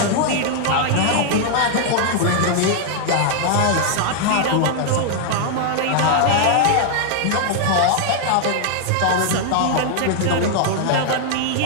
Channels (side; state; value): both; different; correlation 0.00